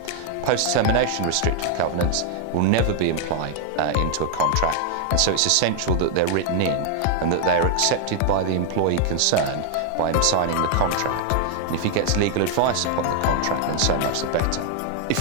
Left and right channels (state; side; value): different; both; correlation 0.00